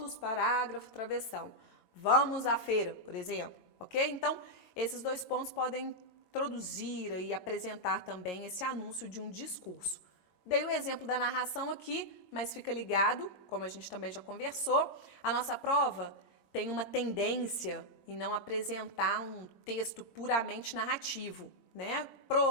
parágrafo, travessão. Vamos à feira, por exemplo, ok? Então, esses 2 pontos podem introduzir e apresentar também esse anúncio de um discurso. Dei o exemplo da narração aqui, mas fica ligado, como a gente também já conversou, a nossa prova tem uma tendência em não apresentar um texto puramente narrativo, né?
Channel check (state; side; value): late; right; 20 ms